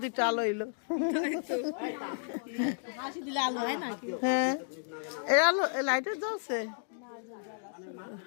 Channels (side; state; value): right; silent; digital silence